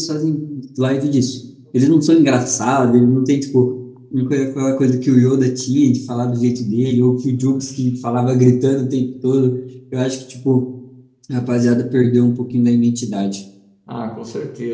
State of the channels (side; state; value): both; identical; correlation 1.00